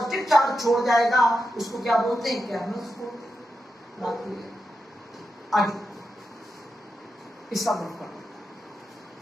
चार्ज छोड़ जाएगा, उसको क्या बोलते हैं, कैर्नल्स बोलते हैं। बात क्लियर, आगे इसका ग्रुप कर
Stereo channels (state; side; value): normal; both; correlation 0.88